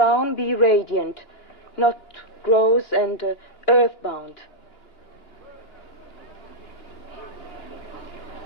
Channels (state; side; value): late; right; 2.9 ms